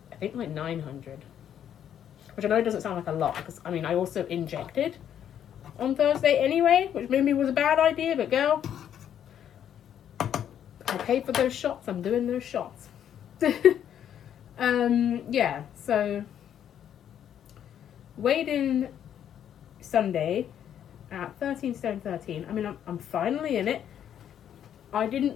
I think, like 900. Which I know doesn't sound like a lot, because, I mean, I also injected on Thursday anyway, which maybe was a bad idea, but girl, I paid for those shots. I'm doing those shots. Yeah, so weighed in Sunday at 13 stone 13. I mean, I'm finally in it. I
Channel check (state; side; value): quieter; right; 9.7 dB